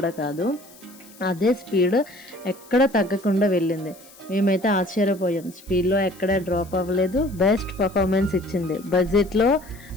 కాదు. అదే స్పీడ్ ఎక్కడ తగ్గకుండా వెళ్ళింది. మేమైతే ఆశ్చర్యపోయాం. స్పీడ్‌లో ఎక్కడ డ్రాప్ అవ్వలేదు. బెస్ట్ పర్ఫార్మెన్స్ ఇచ్చింది. బడ్జెట్‌లో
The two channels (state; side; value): noise; left; hiss, 23 dB below the sound